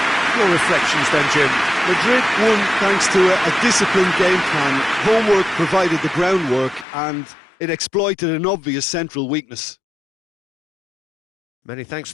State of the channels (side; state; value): right; drops out; at 6.9 s